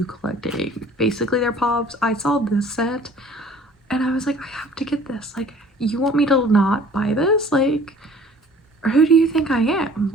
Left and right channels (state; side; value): normal; both; correlation 0.51